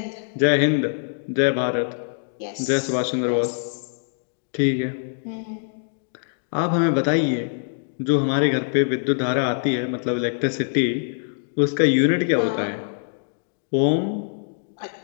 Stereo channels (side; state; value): right; silent; digital silence